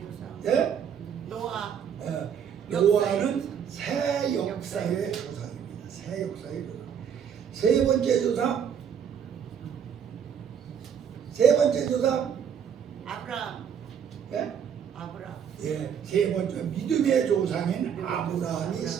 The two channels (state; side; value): quieter; left; 8.0 dB